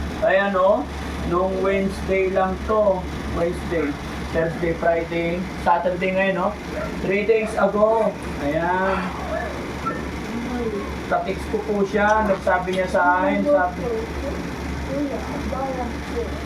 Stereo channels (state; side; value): identical; both; correlation 1.00